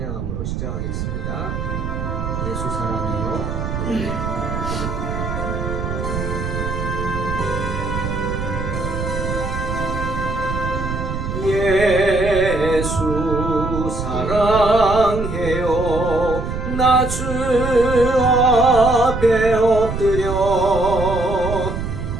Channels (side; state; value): right; noise; rumble, 4 dB below the sound